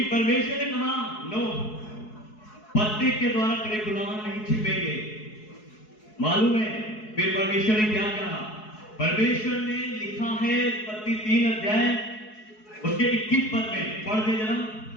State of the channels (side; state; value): right; late; 4.7 ms